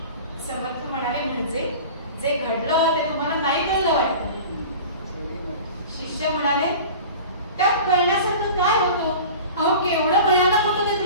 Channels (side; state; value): both; inverted; correlation -0.38